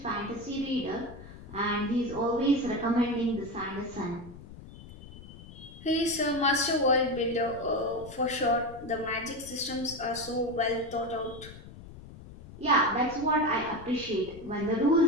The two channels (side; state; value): left; noise; rumble, 16 dB below the sound